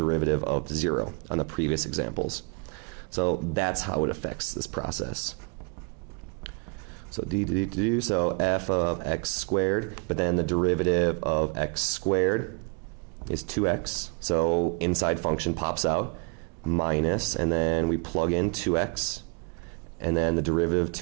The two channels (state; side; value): quieter; left; 32.9 dB